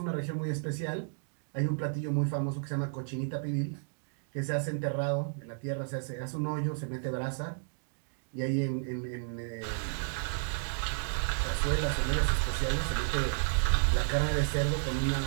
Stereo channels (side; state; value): left; silent; digital silence